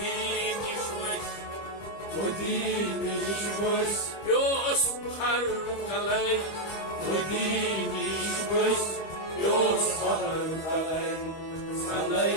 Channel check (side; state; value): right; late; 25 ms